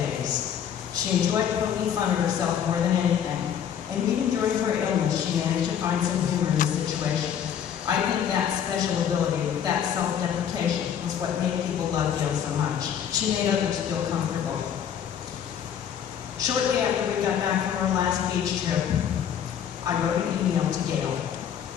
She enjoyed poking fun at herself more than anything, and even during her illness, she managed to find some humor in the situation. I think that special ability, that self-deprecation, was what made people love Gail so much. She made others feel comfortable. Shortly after we got back from our last beach trip, I wrote an email to Gail,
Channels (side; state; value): right; quieter; 8.8 dB